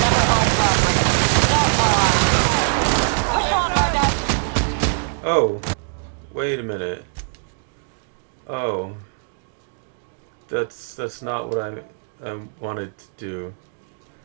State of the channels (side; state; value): left; silent; 59 dB below the other